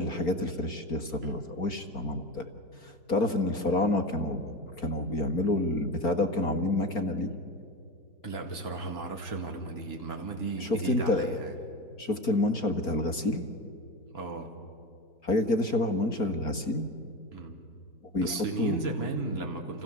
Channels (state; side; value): late; right; 4.4 ms